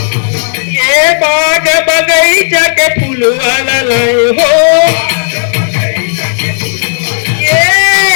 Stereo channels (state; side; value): silent; right; digital silence